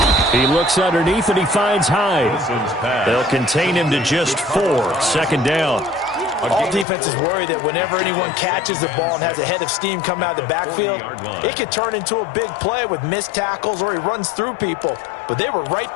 He looks underneath and he finds Hyde. They'll contain him to just 4. 2nd down. All defenses worry that whenever anyone catches the ball and has a head of steam come out of the backfield, it could turn into a big play with missed tackles or he runs through people. But they were right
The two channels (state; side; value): drops out; right; at 6.9 s